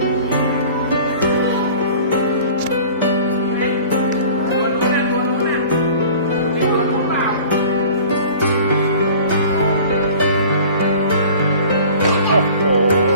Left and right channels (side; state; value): both; inverted; correlation -0.45